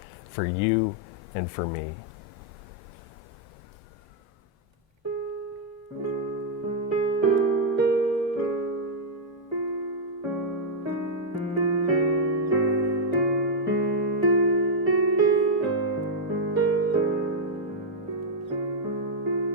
for you and for me.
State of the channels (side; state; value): both; normal; correlation -0.05